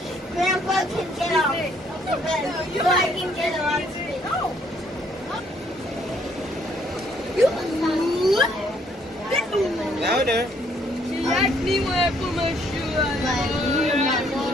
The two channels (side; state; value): both; normal; correlation 0.66